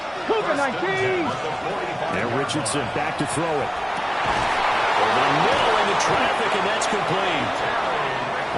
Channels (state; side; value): identical; both; correlation 1.00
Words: Cougar 19. And Richardson back to throw it. Over the middle into traffic, and that's complete.